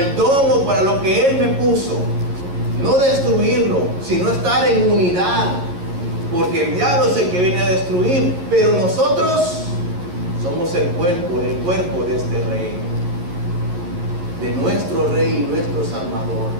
don o para lo que Él me puso. No destruirlo, sino estar en unidad, porque el diablo es el que viene a destruir, pero nosotros somos el cuerpo de este Rey, de nuestro Rey y nuestro Salvador.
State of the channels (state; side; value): late; left; 11 ms